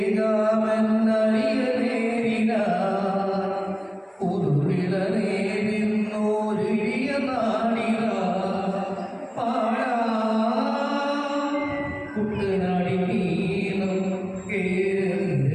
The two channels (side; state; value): both; identical; correlation 1.00